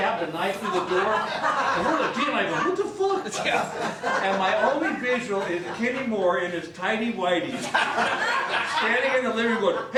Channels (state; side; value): identical; both; correlation 1.00